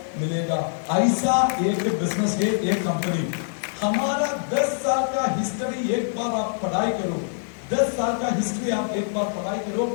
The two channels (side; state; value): right; silent; digital silence